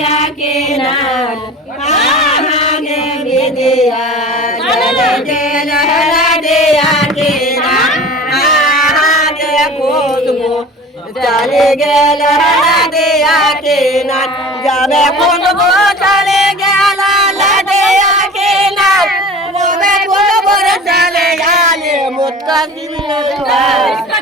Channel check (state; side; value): normal; both; correlation 0.39